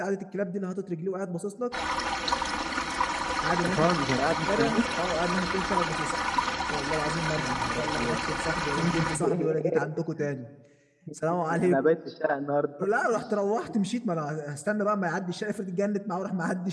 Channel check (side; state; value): both; identical; correlation 1.00